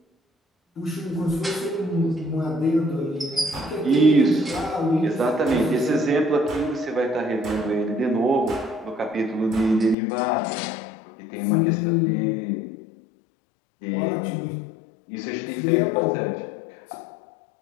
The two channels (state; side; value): drops out; right; at 10.0 s